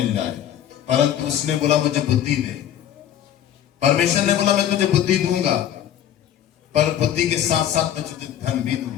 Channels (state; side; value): quieter; right; 10.6 dB